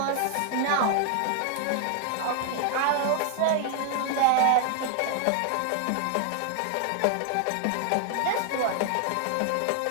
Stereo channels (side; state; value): both; different; correlation 0.00